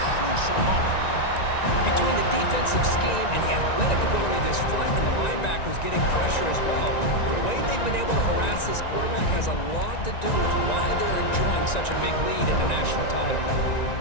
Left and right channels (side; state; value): right; late; 1.9 ms